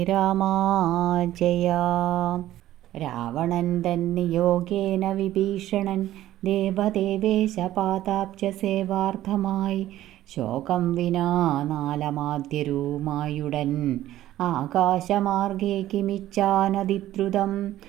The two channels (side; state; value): left; quieter; 13.9 dB